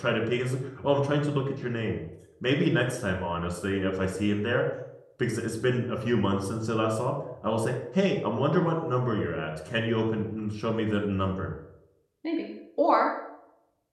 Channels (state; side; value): identical; both; correlation 1.00